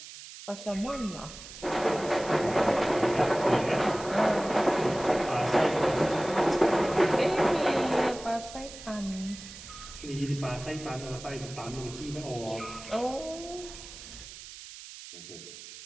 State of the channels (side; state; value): right; noise; hiss, 14 dB below the sound